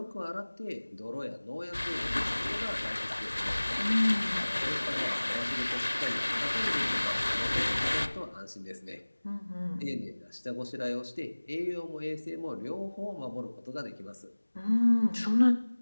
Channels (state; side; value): inverted; both; correlation -1.00